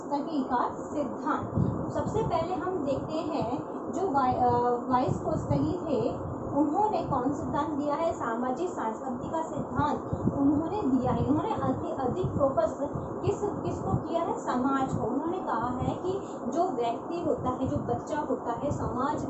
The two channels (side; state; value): both; identical; correlation 1.00